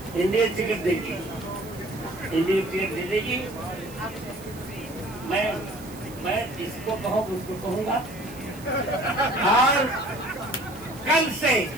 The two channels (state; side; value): noise; right; hiss, 19 dB below the sound